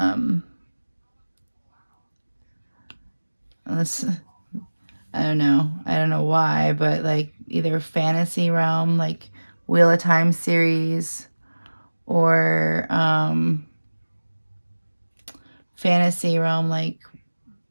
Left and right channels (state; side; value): inverted; both; correlation -1.00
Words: don't know why, but like either fantasy realm, like Wheel of Time series, or fantasy realm, like